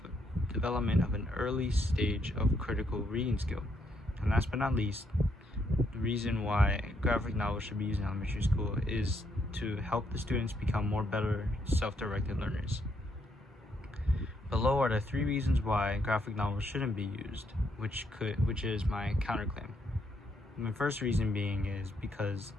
development of an early stage of critical reading skill. And last but not least, the reason why graphic novels should be used in elementary school is to help the students become better self-directed learners. Below are the 3 reasons why graphic novels shouldn't be used, which is my counterclaim. My first reason being is because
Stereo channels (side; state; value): both; normal; correlation 0.74